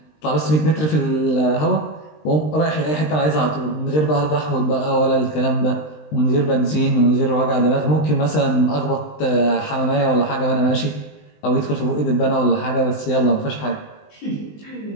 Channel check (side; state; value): right; late; 20 ms